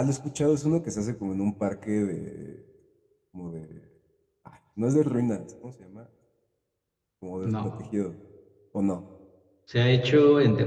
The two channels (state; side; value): identical; both; correlation 1.00